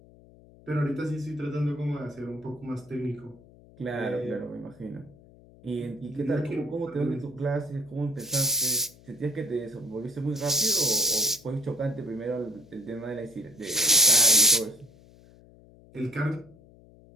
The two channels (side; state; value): left; noise; hum, 24 dB below the sound